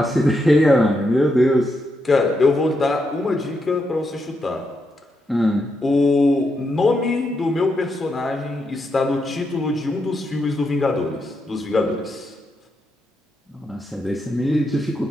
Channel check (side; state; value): both; normal; correlation 0.82